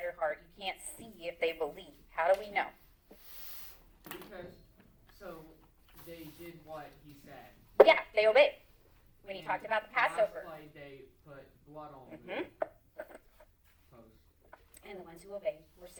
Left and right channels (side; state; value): both; identical; correlation 1.00